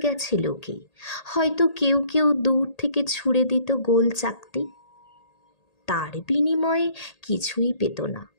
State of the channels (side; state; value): right; late; 1.8 ms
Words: লোকে, হয়তো কেউ কেউ দূর থেকে ছুঁড়ে দিত গোল চাকতি। তার বিনিময়ে কিছুই পেত না।